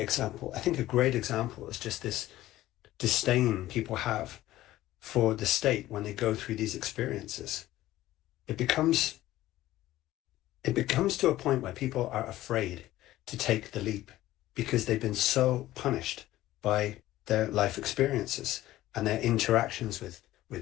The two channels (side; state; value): right; quieter; 15.4 dB